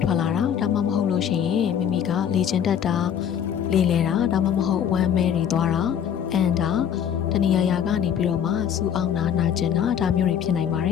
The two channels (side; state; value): right; quieter; 8.8 dB